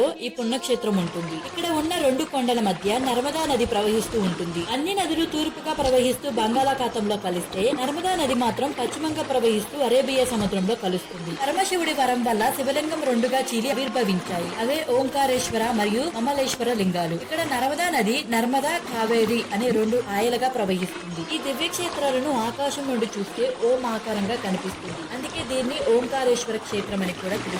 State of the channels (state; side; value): identical; both; correlation 1.00